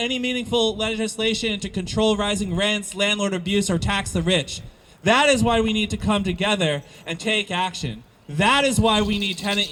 meaningful legislation to control rising rents, landlord abuse, or tax the rich. That is why we need to come together and take action. That is why we need tenant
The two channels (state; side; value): identical; both; correlation 1.00